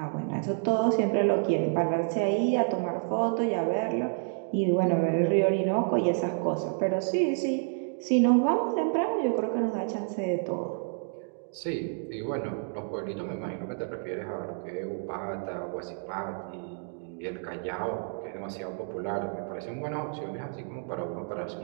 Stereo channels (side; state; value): left; silent; 58 dB below the other